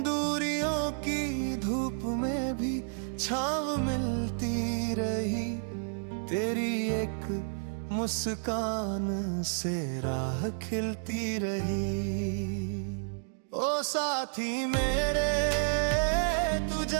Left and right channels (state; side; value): silent; left; digital silence